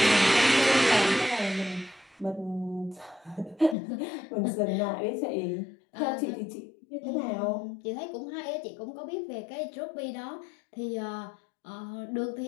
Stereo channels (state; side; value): drops out; right; at 3.8 s